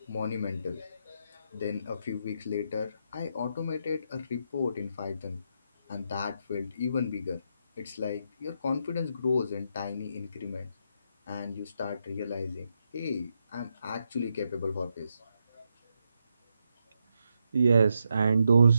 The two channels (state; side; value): inverted; both; correlation -0.81